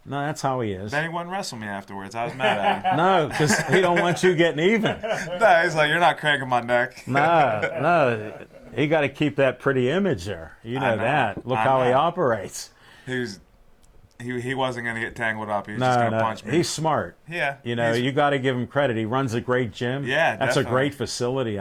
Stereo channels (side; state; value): both; identical; correlation 1.00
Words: No, that's how he is. Then he wouldn't wrestle me afterwards. I was mad at him. No, because he don't want you getting even. No, he's like, you're not cranking my neck. No. He got to keep that pretty image there. You know, know. that. Look I how he know. operates. He wasn't going to get tangled up. He was just No, going to no. punch me. He's smart. Yeah. You know, you got to give him credit. He runs a great gym. Yeah, That's a definitely. great facility